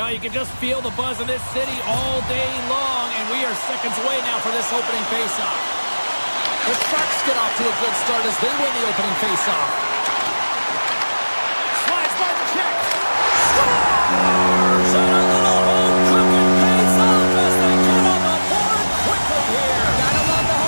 you can just feel the buzz in this city all day long, and we are seconds away now for this opening faceoff. The Sharks get off to a good start as they win the opening faceoff. Slides by the check. Scores! And a little home cooking pays off as they get on the board quickly here. Gotta love the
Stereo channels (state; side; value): inverted; both; correlation -1.00